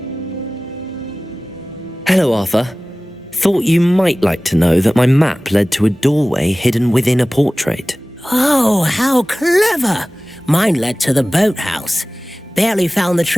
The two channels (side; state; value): both; normal; correlation 0.97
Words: Hello, Arthur. Thought you might like to know that my map led to a doorway hidden within a portrait. Oh, how clever! Mine led to the boathouse. Barely found the